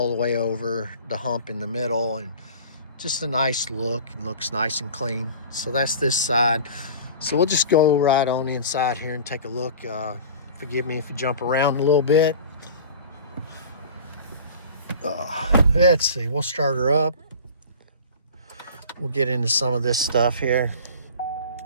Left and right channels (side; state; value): both; inverted; correlation -0.40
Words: the way over the hump in the middle, and just a nice look, and looks nice and clean. So that's this side. So we'll just go right on the inside here and take a look. Forgive me if you jump around a little bit. Let's see, we'll start her up. We'll get into some of this stuff here.